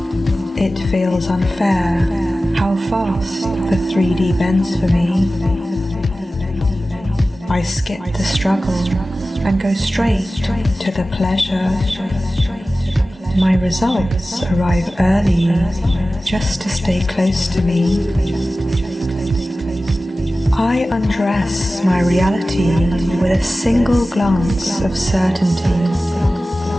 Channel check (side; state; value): both; normal; correlation 0.96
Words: It feels unfair how fast the 3D bends for me. I skip the struggle and go straight to the pleasure. My results arrive early just to stay close to me. I undress my reality with a single glance of certainty.